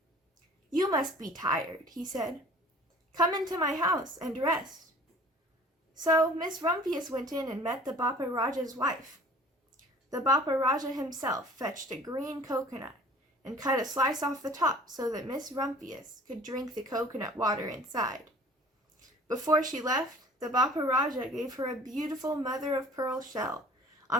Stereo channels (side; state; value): both; normal; correlation 0.48